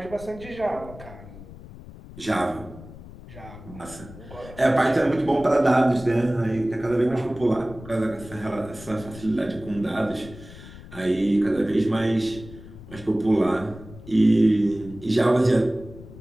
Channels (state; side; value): noise; left; rumble, 16 dB below the sound